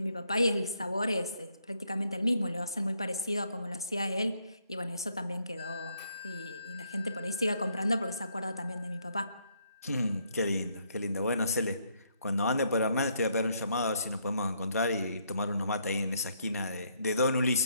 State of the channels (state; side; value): inverted; both; correlation -0.72